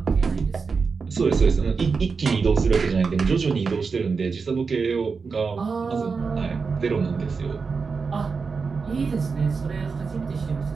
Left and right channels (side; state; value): left; quieter; 5.0 dB